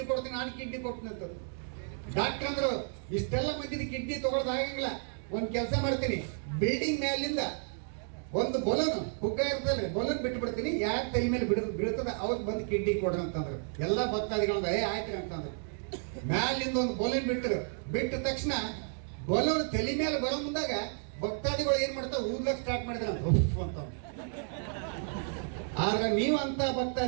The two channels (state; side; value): silent; left; 56 dB below the other